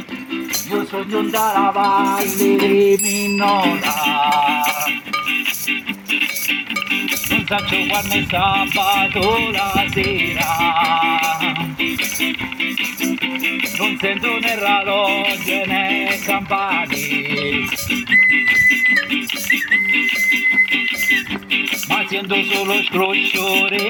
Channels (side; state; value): both; identical; correlation 1.00